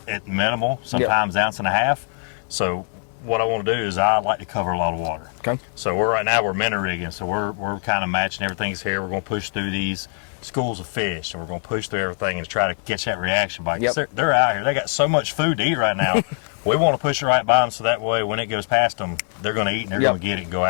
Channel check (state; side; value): silent; right; 55 dB below the other